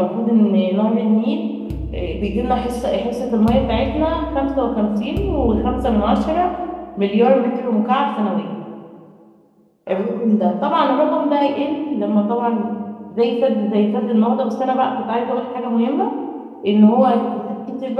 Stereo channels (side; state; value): both; identical; correlation 1.00